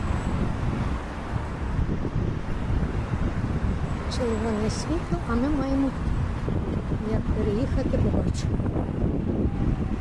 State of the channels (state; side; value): identical; both; correlation 1.00